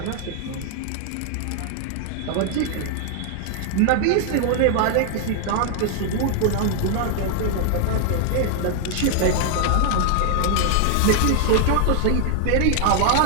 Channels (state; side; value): different; both; correlation 0.00